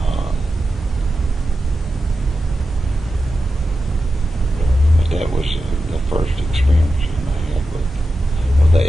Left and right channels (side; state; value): both; normal; correlation 0.91